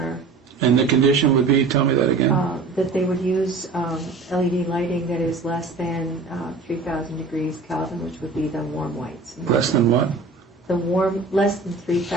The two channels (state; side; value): quieter; left; 4.0 dB